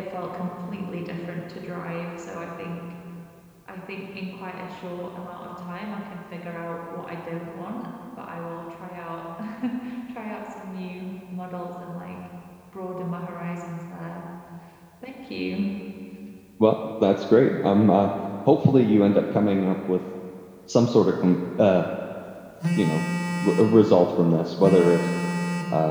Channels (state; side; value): identical; both; correlation 1.00